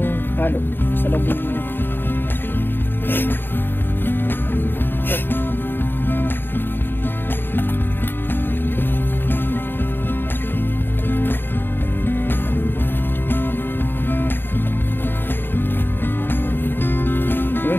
halo sa loob ng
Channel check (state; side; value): late; right; 0.098 ms